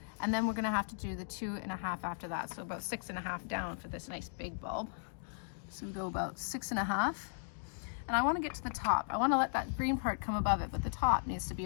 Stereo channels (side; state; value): right; silent; digital silence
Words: and then we're going to have to do the 2.5 after that, so about 6.5 down for this nice big bulb. So we go about 6.5, and I want to get to the top. I want to let that green part come above it, but the top needs to be